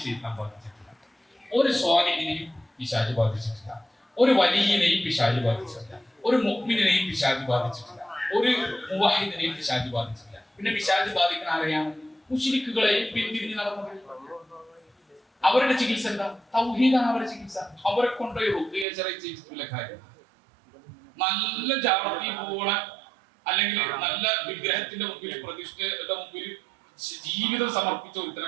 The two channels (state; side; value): drops out; left; at 18.9 s